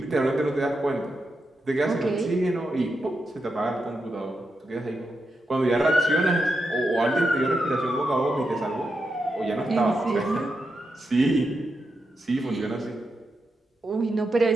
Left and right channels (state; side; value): normal; both; correlation 0.86